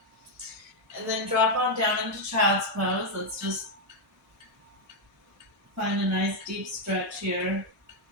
And then drop on down into child's pose. Let's just find a nice deep stretch here.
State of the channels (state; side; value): normal; both; correlation 0.01